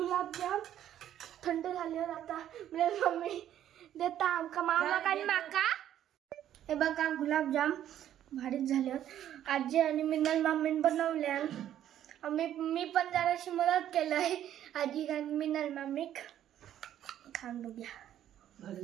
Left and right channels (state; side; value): quieter; left; 11.2 dB